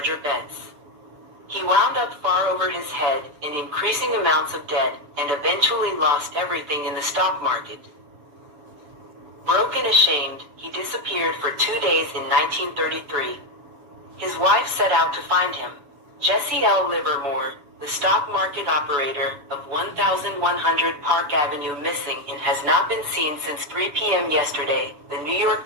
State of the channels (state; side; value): late; left; 7.2 ms